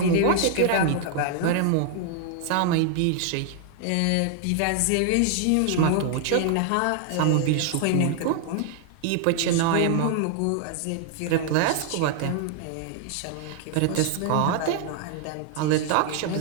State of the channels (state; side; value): different; both; correlation 0.00